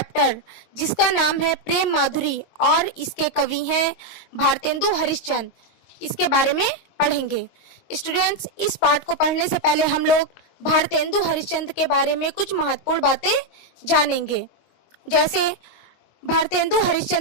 जिसका नाम है प्रेम माधुरी और इसके कवि हैं भारतेंदु हरिश्चंद्र, इसके बारे में पढ़ेंगे। स्टूडेंट्स, इस पाठ को पढ़ने से पहले हम लोग भारतेंदु हरिश्चंद्र के बारे में कुछ महत्वपूर्ण बातें जानेंगे। जैसे भारतेंदु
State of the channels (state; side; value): late; right; 22 ms